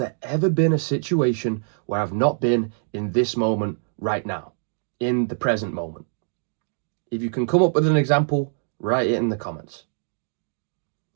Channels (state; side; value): silent; left; digital silence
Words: ever been a situation where I've not been in this moment right now, in the present moment? If you can come up with an example, write it in the comments.